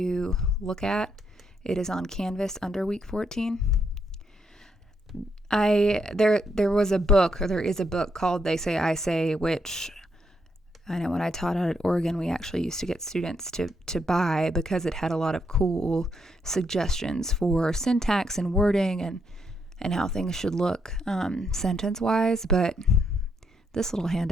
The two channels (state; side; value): normal; both; correlation 0.77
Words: look at. It is on Canvas under week 14. There was a book, or there is a book called They Say, I Say, which I know when I taught out at Oregon, we actually used to get students to buy because it had a lot of cool suggestions for syntax and wording and how things should look sentence-wise. But this little